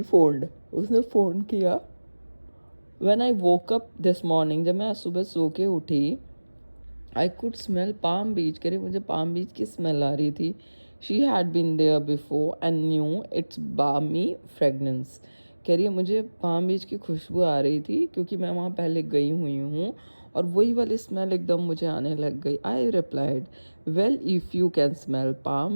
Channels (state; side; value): inverted; both; correlation -1.00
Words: उसने फ़ोन किया. When I woke up this morning, जब मैं आज सुबह सो के उठी, I could smell Palm Beach. कह रही मुझे पाम बीच की स्मेल आ रही थी. She had been there before and knew its balmy fragrance. कह रही है मुझे पाम बीच की खुशबू आ रही थी क्योंकि मैं वहाँ पहले गई हुई हूँ और वही वाली स्मेल एकदम मुझे आने लग गई. I replied, well if you can smell